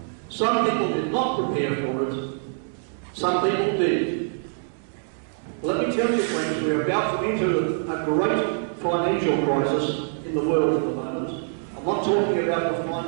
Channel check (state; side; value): silent; left; digital silence